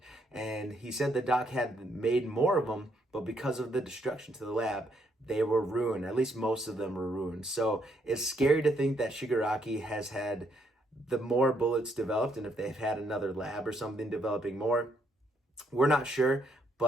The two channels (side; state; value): both; normal; correlation 0.73